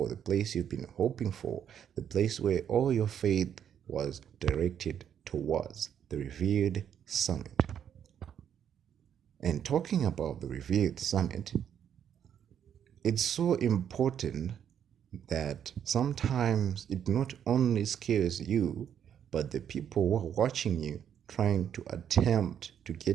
the place you've been hoping for, the place where all your faith was directed towards, the Revered Summit. And talking about the Revered Summit, it's so important that sometimes it not only scares you, but the people who are watching you trying to attempt to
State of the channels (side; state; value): left; quieter; 9.0 dB